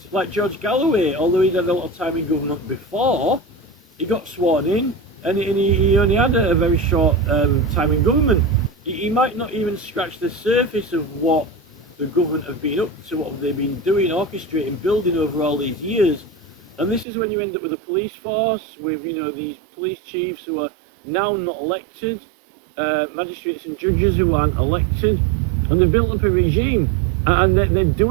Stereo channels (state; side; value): drops out; left; at 17.1 s